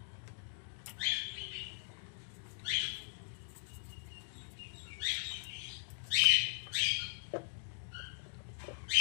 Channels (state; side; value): silent; right; digital silence